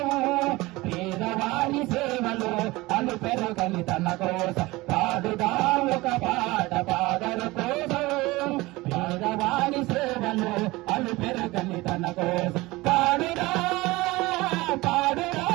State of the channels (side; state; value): left; quieter; 20.8 dB